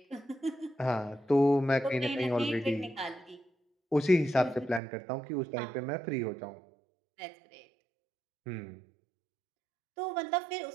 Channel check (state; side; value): drops out; left; at 4.8 s